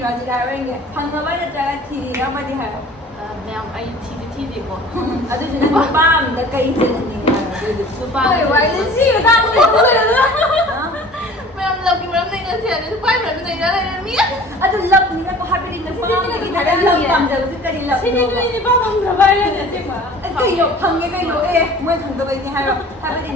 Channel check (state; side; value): normal; both; correlation 0.46